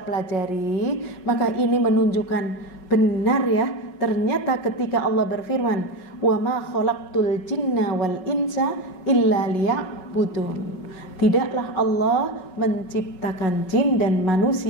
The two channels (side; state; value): right; late; 5.4 ms